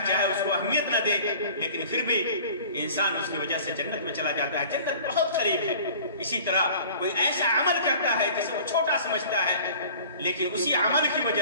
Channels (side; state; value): both; inverted; correlation -0.45